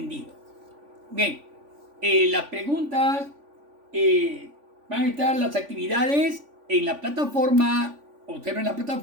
Bien, las preguntas, van a estar las actividades en la plataforma. Observen la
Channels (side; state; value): left; late; 3.5 ms